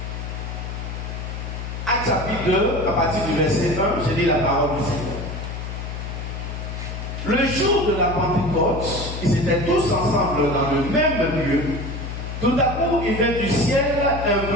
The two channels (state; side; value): noise; left; hum, 6 dB below the sound